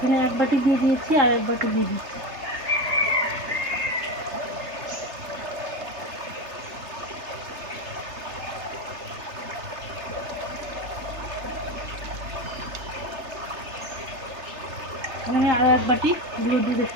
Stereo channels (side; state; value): left; late; 3.3 ms